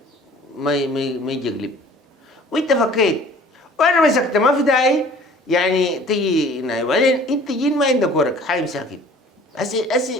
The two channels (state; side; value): normal; both; correlation 0.50